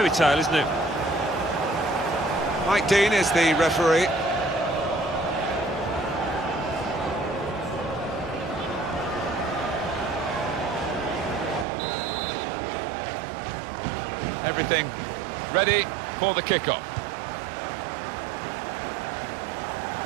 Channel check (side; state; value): left; drops out; at 11.7 s